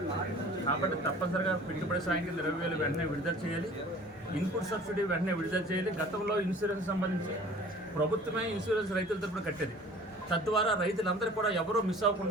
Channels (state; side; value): normal; both; correlation 0.47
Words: కాబట్టి తప్పనిసరిగా పెట్టుబడి సాయం కింద 20,000 వెంటనే విడుదల చేయాలి. ఇన్పుట్ సబ్సిడీ వెంటనే విడుదల చేయాలి. గతంలో ఇన్సూరెన్స్ సంబంధించి ప్రభుత్వమే ఇన్సూరెన్స్ రైతుల తరపున కట్టేది. తద్వారా రైతులందరూ కూడా ఎవరూ మిస్